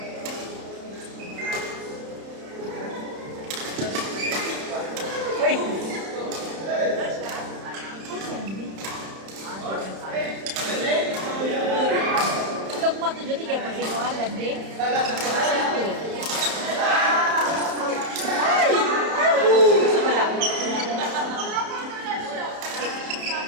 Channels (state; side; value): late; left; 31 ms